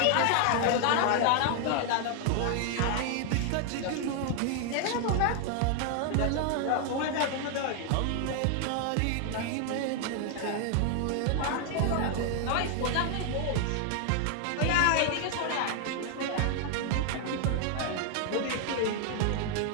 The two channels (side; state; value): both; different; correlation 0.00